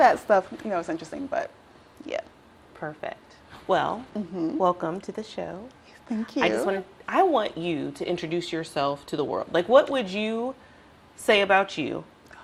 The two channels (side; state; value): both; identical; correlation 1.00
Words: stuff, it's interesting, but yeah. Perfect. Well, welcome to the show. Thank you. I want you to introduce yourself to the world. Like, what would you say about you